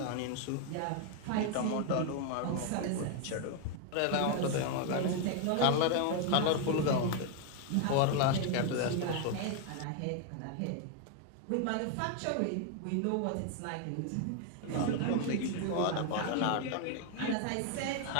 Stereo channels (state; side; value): different; both; correlation 0.01